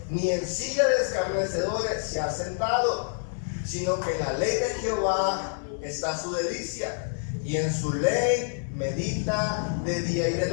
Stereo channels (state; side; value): silent; right; 60 dB below the other